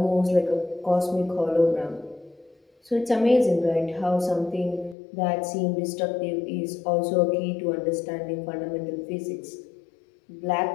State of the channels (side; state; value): right; drops out; at 5.0 s